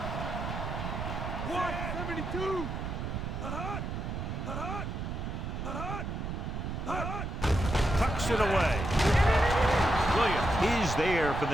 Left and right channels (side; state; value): right; noise; rumble, 4 dB below the sound